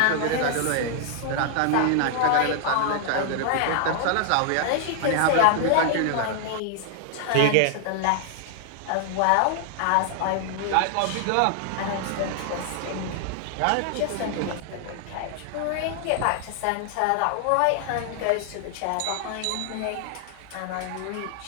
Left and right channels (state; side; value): different; both; correlation 0.00